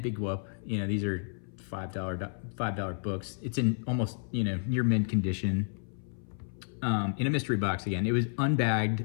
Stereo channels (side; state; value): right; silent; 56 dB below the other